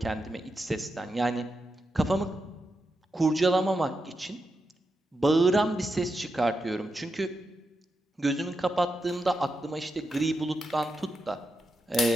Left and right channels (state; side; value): normal; both; correlation 0.86